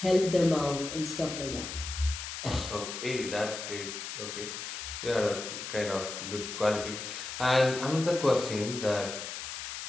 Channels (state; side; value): noise; left; hiss, 7 dB below the sound